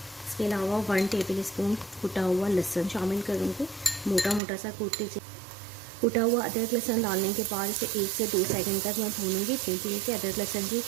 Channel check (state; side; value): drops out; left; at 4.4 s